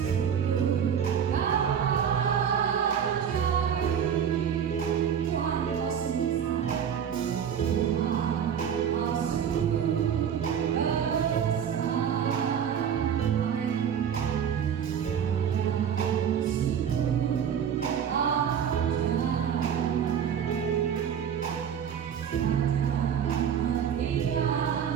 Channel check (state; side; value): quieter; left; 8.3 dB